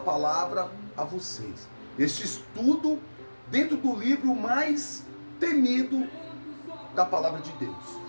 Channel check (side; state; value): both; inverted; correlation -1.00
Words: a vocês. Este estudo dentro do livro mais temido da palavra de Deus.